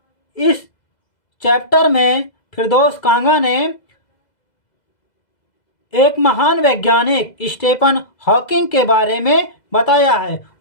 इस चैप्टर में फिरदौस कांगा ने एक महान वैज्ञानिक स्टीफन हॉकिंग के बारे में बताया है,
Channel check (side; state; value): right; late; 2.0 ms